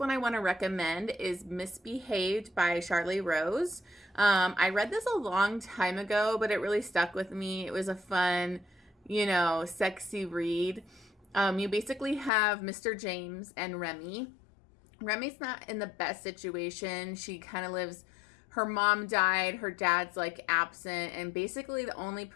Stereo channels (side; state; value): right; drops out; at 12.3 s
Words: I want to recommend is Misbehaved by Charleigh Rose. I read this a long time ago, but it really stuck with me. It was a fun, sexy read. You basically have Mr. James and Remy. Remy's not in the best situation. She kind of lives, her mom died, her dad's like absent, and basically the only